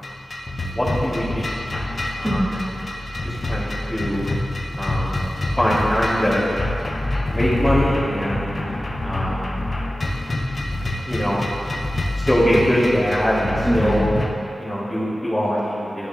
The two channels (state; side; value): normal; both; correlation 0.95